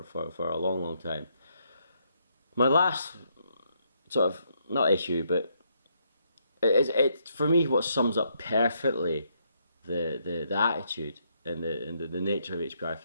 a long time. My last sort of, not issue, but it's for me what sums up perfectly the attitude and the nature of HPI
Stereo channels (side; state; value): both; inverted; correlation -0.75